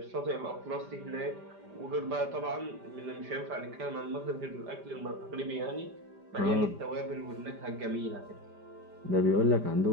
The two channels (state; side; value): late; left; 5.0 ms